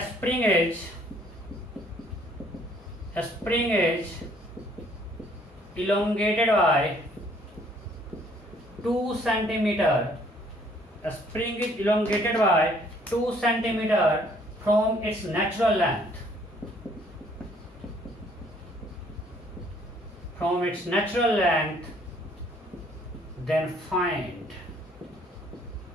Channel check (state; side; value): normal; both; correlation 0.62